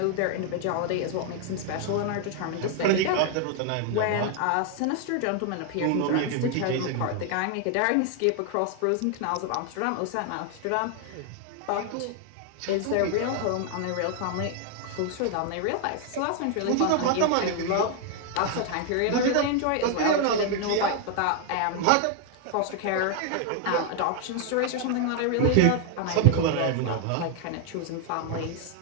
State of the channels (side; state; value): both; different; correlation 0.00